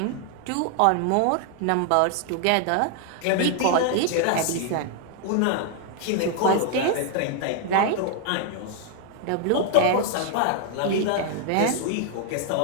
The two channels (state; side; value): different; both; correlation 0.00